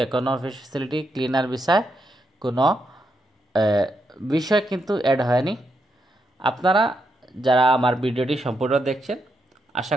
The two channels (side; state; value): both; normal; correlation 0.81